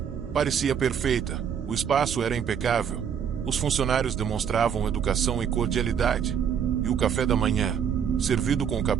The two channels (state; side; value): quieter; left; 7.9 dB